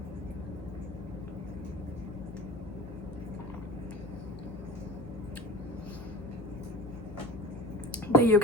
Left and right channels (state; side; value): normal; both; correlation 0.35